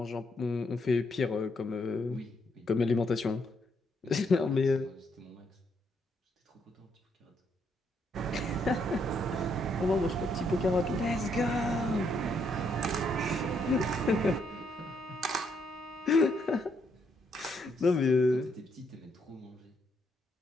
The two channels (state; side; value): normal; both; correlation 0.74